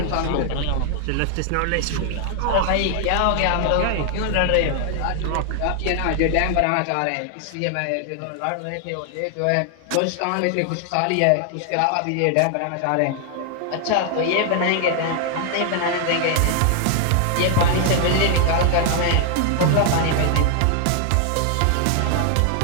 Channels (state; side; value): different; both; correlation 0.00